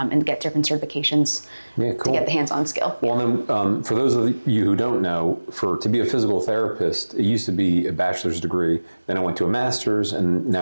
get different certifications to get the hands-on skill. Well, then for those of you who don't know, to be a physical therapist, it used to be a bachelor's degree, then I went to a master's, and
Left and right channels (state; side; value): inverted; both; correlation -1.00